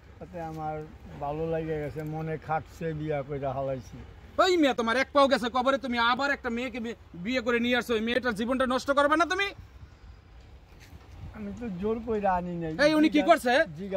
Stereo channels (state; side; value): identical; both; correlation 1.00